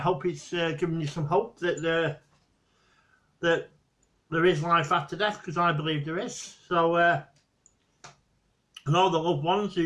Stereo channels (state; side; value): identical; both; correlation 1.00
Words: hope it's given you some hope that there is life after death, because I believe there is. So, and all the loved ones